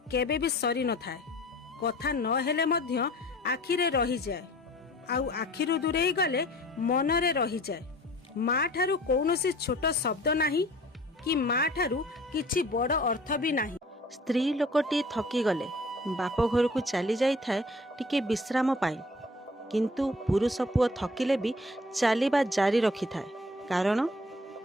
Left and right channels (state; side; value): normal; both; correlation 0.49